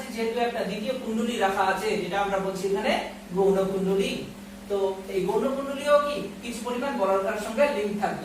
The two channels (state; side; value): identical; both; correlation 1.00